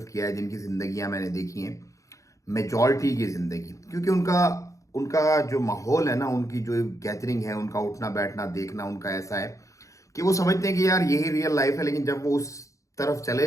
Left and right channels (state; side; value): late; right; 0.15 ms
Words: کیا ہے، جن کی زندگیاں میں نے دیکھی ہیں، میجورٹی کی زندگی، کیونکہ ان کا جو ماحول ہے نا، ان کی جو گیدرنگ ہے، ان کا اٹھنا بیٹھنا دیکھنا ان کا ایسا ہے کہ وہ سمجھتے ہیں کہ یار یہی ریئل لائف ہے، لیکن جب وہ اس طرف چلے